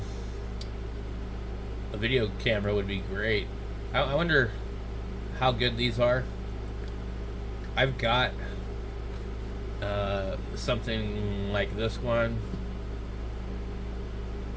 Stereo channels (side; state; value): both; identical; correlation 1.00